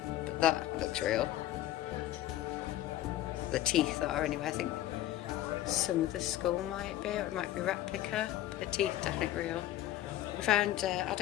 That looks real. The teeth are anyway. I think some of the skull might be, or it might be replica. But the teeth definitely real. We found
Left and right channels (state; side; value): quieter; right; 13.7 dB